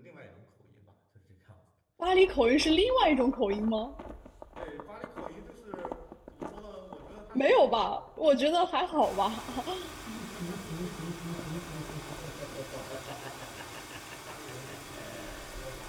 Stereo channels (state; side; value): identical; both; correlation 1.00